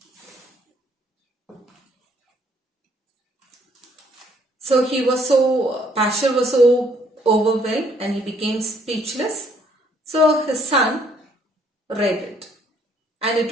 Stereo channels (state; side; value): normal; both; correlation 0.65